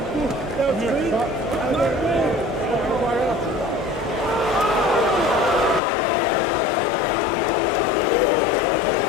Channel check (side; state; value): right; drops out; at 5.8 s